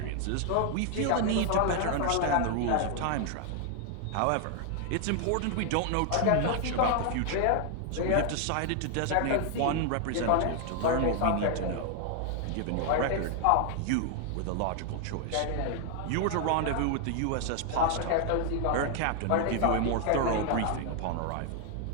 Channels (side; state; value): both; different; correlation 0.00